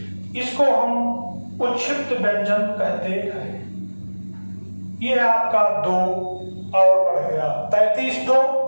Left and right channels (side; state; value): both; inverted; correlation -1.00